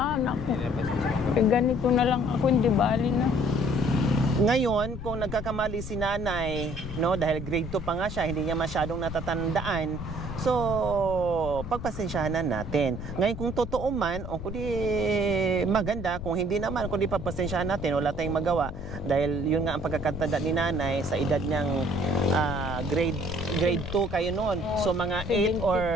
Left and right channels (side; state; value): left; noise; rumble, 8 dB below the sound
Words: ako. Ganito na lang ako, hindi bali na. Ngayon, kung nagkakamali si nanay, no, dahil grade 2 pa nga siya, hindi niya masyadong natatandaan. So, pagpasensyahan natin. Ngayon, kung totoo man, o kundi maganda, kung hindi naman, kundi pagpasensyahan natin, wala tayong magawa. Dahil yun nga ang pagkakatanda ni nanay sa edad niyang grade 2 kayo noon. So, mga 8